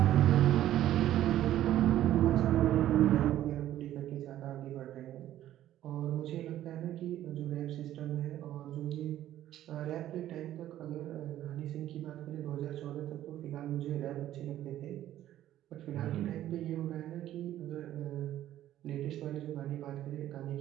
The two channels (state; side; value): quieter; left; 12.8 dB